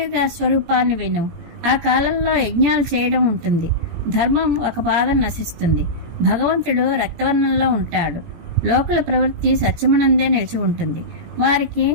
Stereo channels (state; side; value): late; left; 17 ms